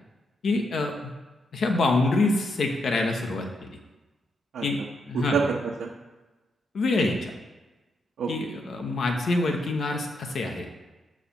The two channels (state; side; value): normal; both; correlation 0.79